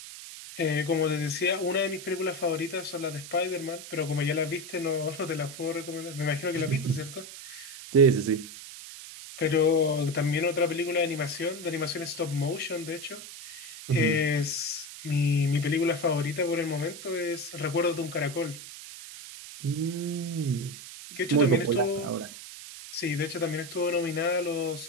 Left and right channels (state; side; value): noise; right; hiss, 13 dB below the sound